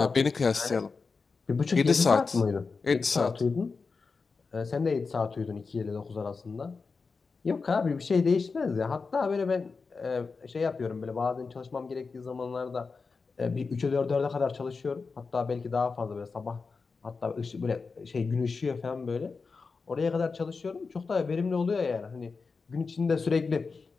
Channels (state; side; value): quieter; right; 4.6 dB